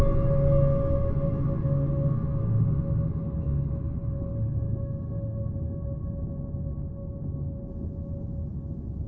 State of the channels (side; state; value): both; identical; correlation 1.00